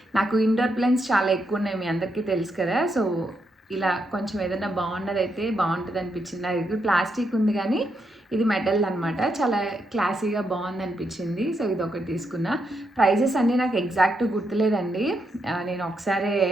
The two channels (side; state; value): both; normal; correlation 0.81